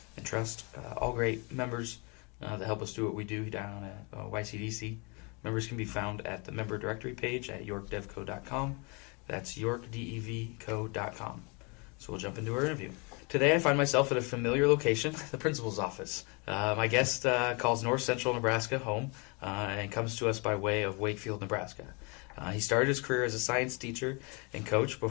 and Trust, all great members that help us do what we do down at YCDC. Members can be found at the member directory page at yorkdevco.com. That's yorkdevco.com. So we'll jump into our interview. Today I find myself at a familiar location, the principal's office. My guest calls North Central Nebraska home and comes to us by way of Wakefield, Nebraska. He started his career as a science teacher and coach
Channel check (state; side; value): quieter; right; 31.2 dB